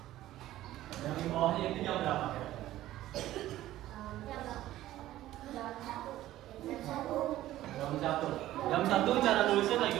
Yang di bawahnya itu jam berapa? Jam 1 cara nulisnya kayak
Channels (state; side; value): quieter; left; 14.5 dB